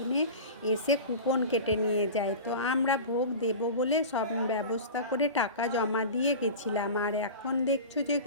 এসে কুপন কেটে নিয়ে যায়। তো আমরা ভোগ দেব বলে সব ব্যবস্থা করে টাকা জমা দিয়ে গেছিলাম। আর এখন দেখছো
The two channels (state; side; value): inverted; both; correlation -0.32